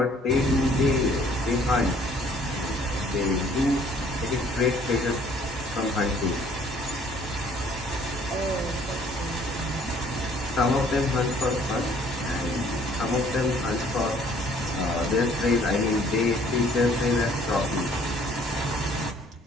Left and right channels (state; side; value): normal; both; correlation 0.58